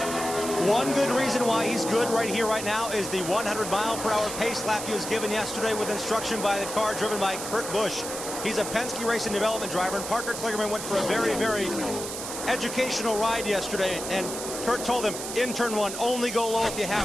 One good reason why he's good right here, right now, is the 100-mile-per-hour pace lap he was given yesterday with instruction by the car driven by Kurt Busch. He's a Penske Racing Development driver, and Parker Kligerman went for a very, very educational ride yesterday, and Kurt told him, in turn 1, only go low if you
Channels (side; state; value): right; noise; hiss, 7 dB below the sound